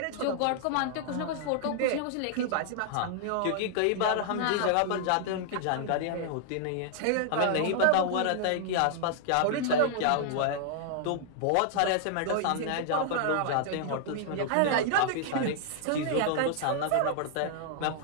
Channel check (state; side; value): different; both; correlation -0.01